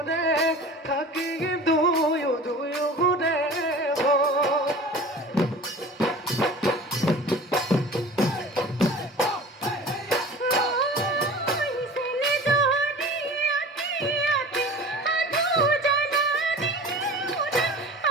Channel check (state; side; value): normal; both; correlation 0.39